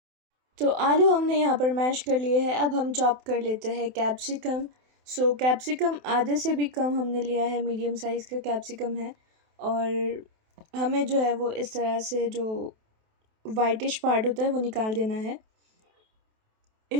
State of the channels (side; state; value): left; late; 28 ms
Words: तो आलू हमने यहाँ पर मैश कर लिए हैं। अब हम चॉप कर लेते हैं कैप्सिकम। कैप्सिकम आधे से भी कम हमने लिया है, मीडियम साइज़ का कैप्सिकम है। और हमें जो है वो इस तरह से जो वाइटिश पार्ट होता है वो निकाल देना है।